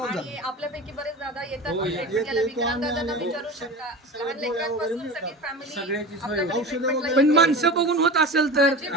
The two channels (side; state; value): both; normal; correlation 0.31